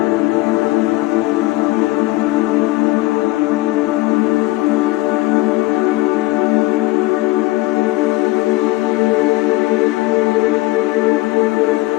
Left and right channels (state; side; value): quieter; right; 20.2 dB